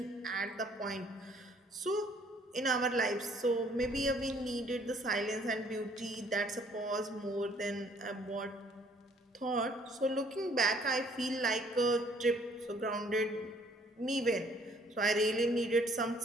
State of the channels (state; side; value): normal; both; correlation 0.61